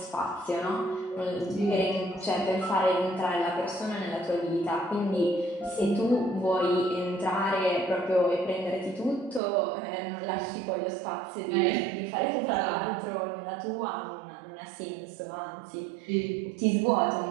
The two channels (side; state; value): left; drops out; at 9.4 s